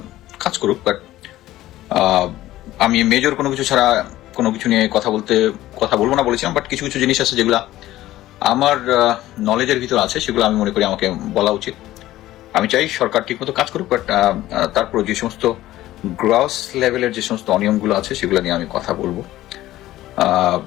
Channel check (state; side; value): quieter; right; 15.2 dB